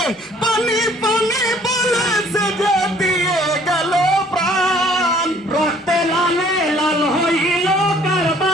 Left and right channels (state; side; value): normal; both; correlation 0.57